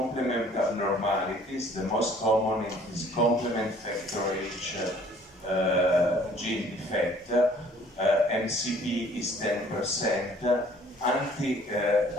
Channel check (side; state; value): both; normal; correlation 0.56